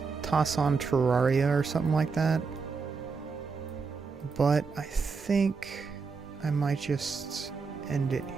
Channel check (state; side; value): quieter; left; 5.0 dB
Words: toss on Terraria or something like that. But I think I might just end it